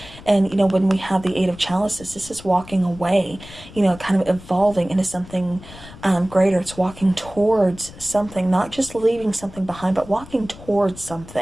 And, when we have the Eight of Chalices, this is walking away, kind of evolving into something greater. It's walking towards something, not just leaving something behind, but walking towards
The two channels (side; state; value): left; noise; rumble, 18 dB below the sound